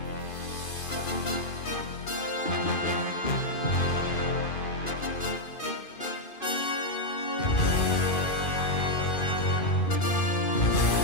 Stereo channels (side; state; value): right; late; 2.5 ms